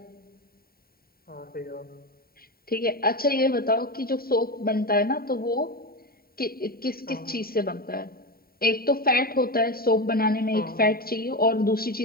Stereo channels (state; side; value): late; right; 0.43 ms